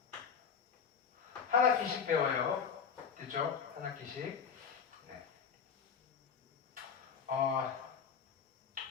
한 학기씩 배워요. 됐죠? 한 학기씩. 네.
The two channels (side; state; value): right; quieter; 6.7 dB